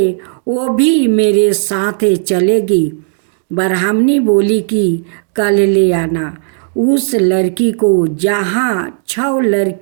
वो भी मेरे साथ चलेगी। ब्राह्मणी बोली कि कल ले आना उस लड़की को, जहाँ 6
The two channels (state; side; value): silent; left; 64 dB below the other